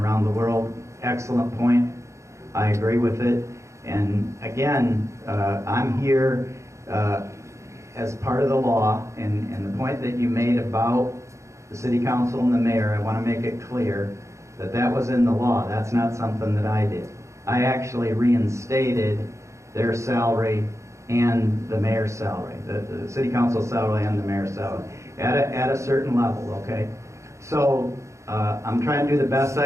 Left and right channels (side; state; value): left; late; 0.14 ms